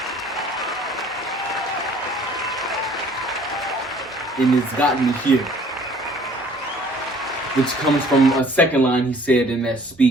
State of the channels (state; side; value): normal; both; correlation 0.55